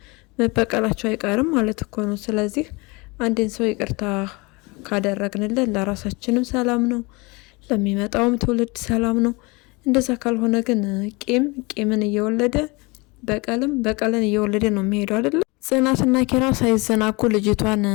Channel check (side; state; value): right; quieter; 26.3 dB